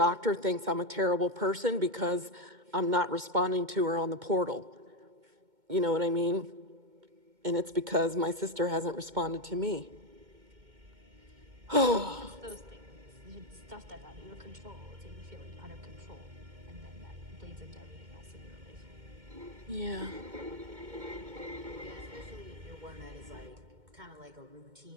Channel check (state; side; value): late; left; 2.2 ms